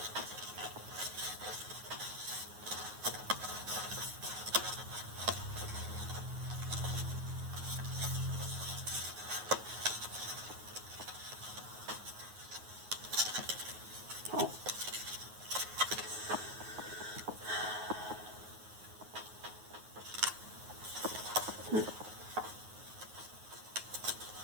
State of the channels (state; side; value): late; left; 9.4 ms